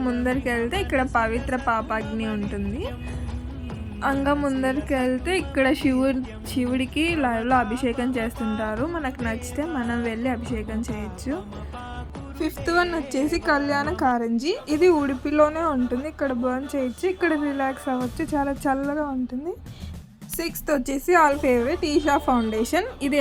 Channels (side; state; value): both; identical; correlation 1.00